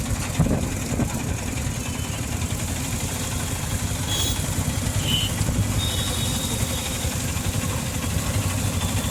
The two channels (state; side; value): identical; both; correlation 1.00